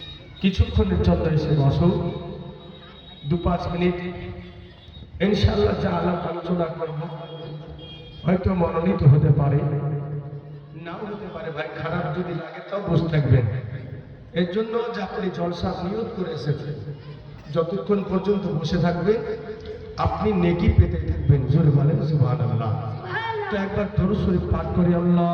কিছুক্ষণের জন্য এসে বসো, 2-5 মিনিট ইনশাআল্লাহ যা আলাপ আলোচনা করব হয়তো মনোনীত হতে পারে, নাও হতে পারে। ভাই খারাপ যদি লাগে তাও বসে থাকবেন। এর জন্য যে আপনি জলসা নিয়ত করে এসেছেন, যতক্ষণ পর্যন্ত বসে থাকবেন আপনি নেকি পেতে থাকবেন। জোরে বলেন সুবহানাল্লাহ। তো একবার দরুদ শরীফ পাঠ করি।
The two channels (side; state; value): both; identical; correlation 1.00